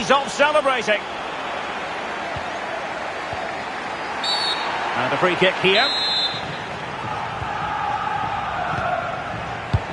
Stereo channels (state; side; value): identical; both; correlation 1.00